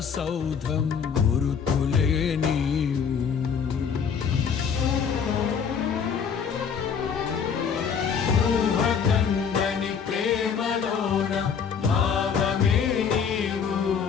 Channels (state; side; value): quieter; right; 6.7 dB